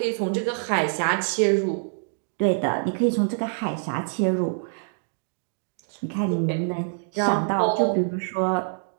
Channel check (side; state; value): left; silent; digital silence